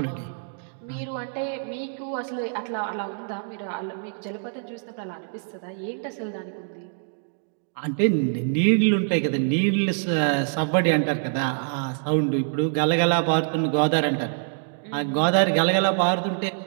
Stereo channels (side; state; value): left; silent; digital silence